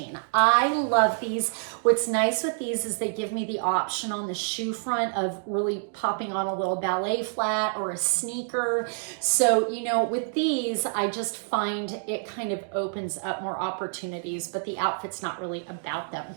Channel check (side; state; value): left; silent; digital silence